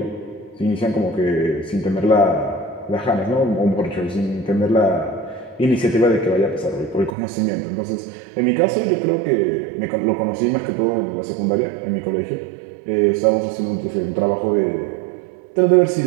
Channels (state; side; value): drops out; left; at 7.1 s